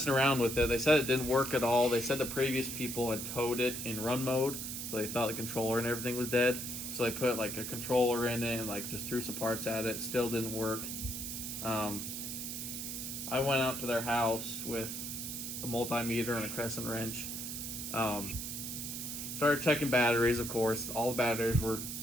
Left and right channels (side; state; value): right; noise; hiss, 5 dB below the sound